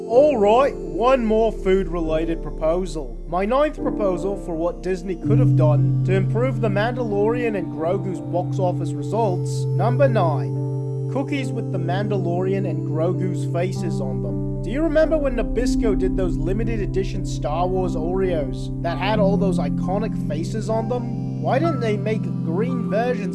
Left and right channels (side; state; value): both; identical; correlation 1.00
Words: Alright, one more food-related proposal. My 9th proposal for what Disney could have done to improve The Mandalorian and Grogu's box office results. Number 9. Cookies with The Mandalorian and Grogu's faces on them. Do you remember when Nabisco did those limited edition Star Wars Oreos that had all those iconic faces on them? Why didn't they make green